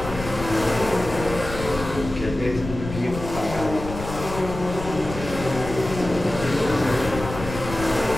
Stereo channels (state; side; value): noise; left; rumble, 9 dB below the sound